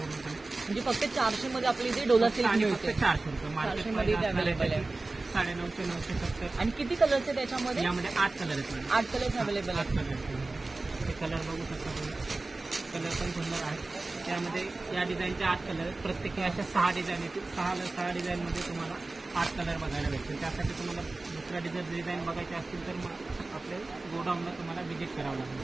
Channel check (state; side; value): quieter; left; 3.2 dB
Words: म्हणजे फक्त 400 मध्ये आपली इथे डोला सिल्क आणि मिळते। फक्त 400 रुपये मार्केट मध्ये अवेलेबल आहे। 950 970। आणि किती कलर्स आहेत त्याच्यामध्ये? यामध्ये 8 कलर आहेत। 8 कलर्स अवेलेबल आहेत। 8 कलर, हे कलर बघू शकता तुम्ही, कलर पण सुंदर आहे। त्यामध्ये या डिझाईनचे 8 कलर आहेत, प्रत्येकी अशा 6 डिझाईन येतील। 6 डिझाईनमध्ये तुम्हाला 8 कलर बघायला भेटतील। त्यासाठी तुम्हाला दुसऱ्या डिझाईन बघायचे असतील तर मग आपल्या गोडाऊनला तुम्हाला व्हिजिट करावं